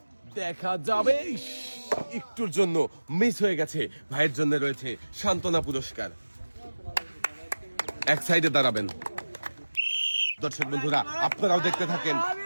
দেখা যাবে, একটুর জন্য মিস হয়ে গেছে। ভাইয়ের জন্য রয়েছে সান্ত্বনা পুরস্কার। এক সাইডে দাঁড়াবেন। দর্শক বন্ধুরা, আপনারাও দেখতে থাকেন।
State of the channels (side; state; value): both; inverted; correlation -1.00